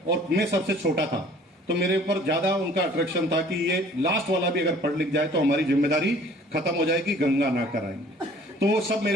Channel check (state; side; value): normal; both; correlation 0.52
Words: और मैं सबसे छोटा था तो मेरे ऊपर ज्यादा उनका अट्रैक्शन था कि ये लास्ट वाला भी अगर पढ़ लिख जाए तो हमारी जिम्मेदारी खत्म हो जाएगी, गंगा ना कराएंगे। तो वो सब